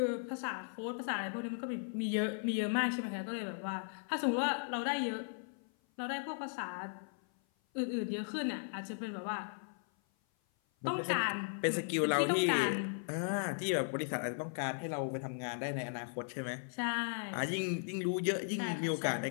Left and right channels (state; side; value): silent; right; 53 dB below the other